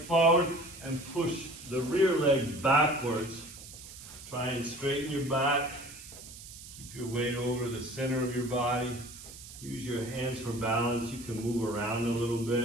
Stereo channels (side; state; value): right; noise; hiss, 15 dB below the sound